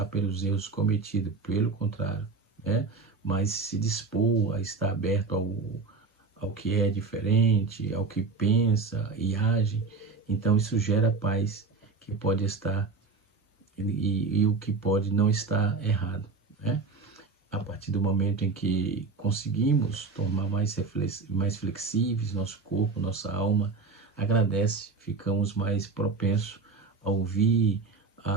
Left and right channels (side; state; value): left; quieter; 4.3 dB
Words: pelos erros cometidos, pelo contrário, né? Mas se dispor a estar aberto ao que é diferente, ao que pensa e age. Então isso gera paz, que pode estar e o que pode não estar errado, né? A partir do momento em que conseguimos tornar mais flexíveis nosso corpo, nossa alma agradece, ficamos mais propensos a ouvir,